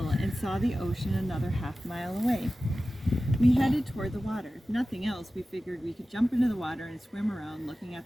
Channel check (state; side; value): normal; both; correlation 0.95